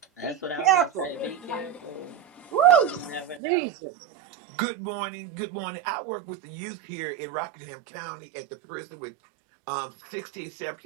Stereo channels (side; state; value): left; drops out; at 3.4 s